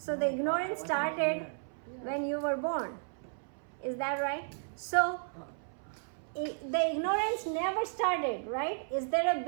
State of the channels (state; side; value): silent; left; 55 dB below the other